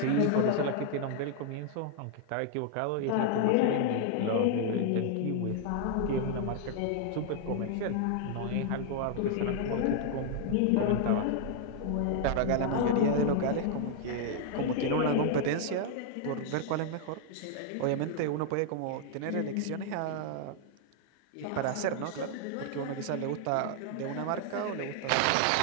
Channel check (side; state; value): both; different; correlation 0.00